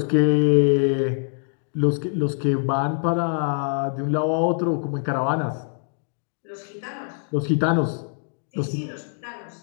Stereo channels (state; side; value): silent; right; digital silence